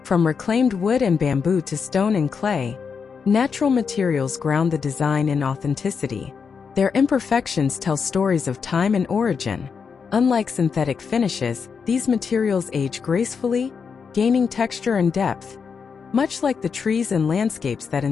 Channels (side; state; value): right; quieter; 5.9 dB